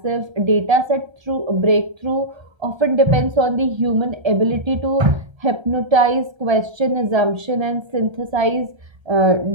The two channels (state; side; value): late; left; 1.3 ms